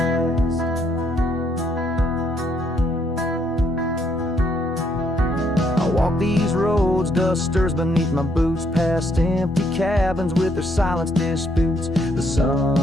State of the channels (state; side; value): normal; both; correlation 0.71